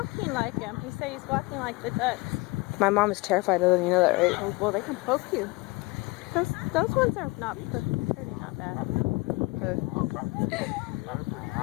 like him. He said he's walking like the ducks. My mom is terrified of them. You know that, right? Oh, well, they can poke you. Those ones are not pretty, not bad.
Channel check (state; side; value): quieter; right; 24.5 dB